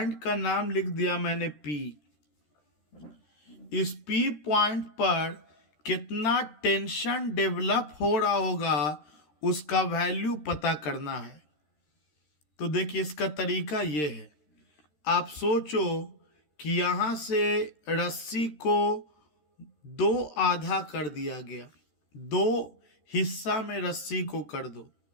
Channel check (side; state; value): right; late; 13 ms